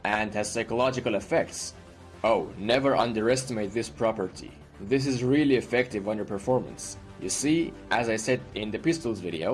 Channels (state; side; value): identical; both; correlation 1.00